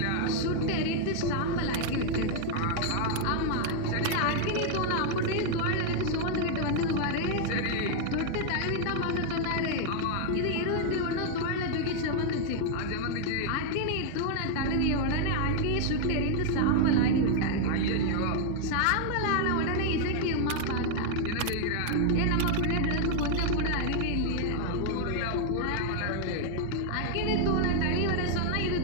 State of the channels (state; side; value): different; both; correlation 0.00